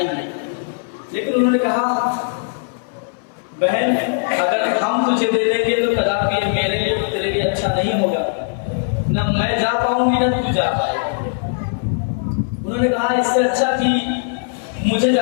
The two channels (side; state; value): right; silent; 60 dB below the other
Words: लेकिन उन्होंने कहा, बहन अगर हम तुझे दे देंगे तो कदापि मेरे लिए तेरे लिए अच्छा नहीं होगा, ना मैं जा पाऊंगी ना तू जा पाएगा। उन्होंने कहा, इससे अच्छा कि मुझे